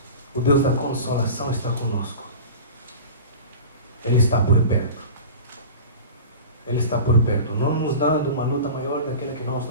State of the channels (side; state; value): both; inverted; correlation -0.35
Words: o Deus da consolação, está conosco. Ele está por perto. Ele está por perto, não nos dando uma luta maior daquela que nós